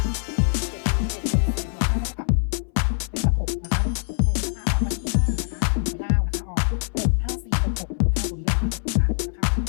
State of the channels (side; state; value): right; silent; 61 dB below the other